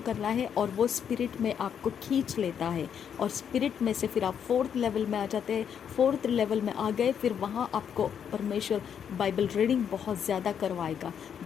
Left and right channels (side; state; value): right; quieter; 8.1 dB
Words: करना है और वो स्पिरिट में आपको खींच लेता है और स्पिरिट में से फिर आप 4th लेवल में आ जाते हैं। 4th लेवल में आ गए, फिर वहाँ आपको परमेश्वर बाइबल रीडिंग बहुत ज़्यादा करवाएगा।